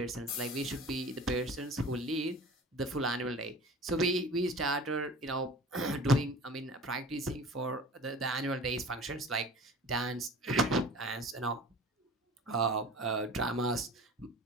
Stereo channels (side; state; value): both; normal; correlation 0.41